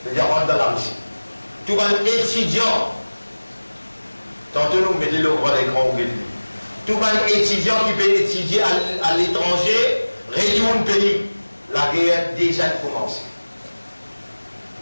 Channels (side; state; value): both; inverted; correlation -1.00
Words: c'est-à-dire rentre dans la Russie. Tout le monde étudiant, tantôt nous mettez le droit d'écran au Bénin. Tout le monde étudiant qui peut étudier à l'étranger, retourne pays, la guerre déjà commencé.